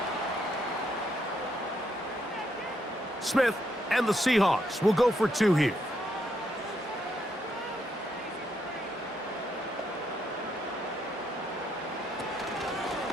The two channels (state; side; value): normal; both; correlation 0.76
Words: Smith and the Seahawks will go for 2 here.